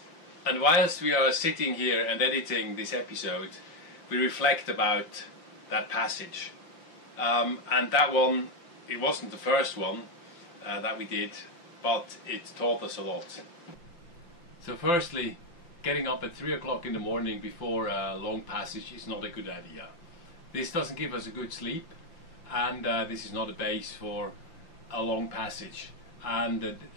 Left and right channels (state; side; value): late; right; 5.8 ms